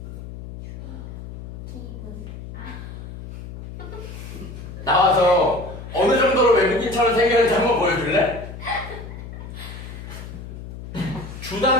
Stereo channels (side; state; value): left; noise; hum, 11 dB below the sound